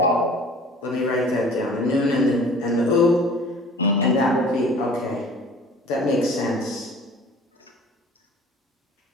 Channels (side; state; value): both; normal; correlation 0.47